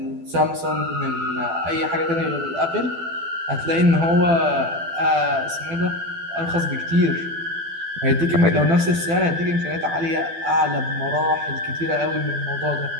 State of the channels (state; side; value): late; left; 12 ms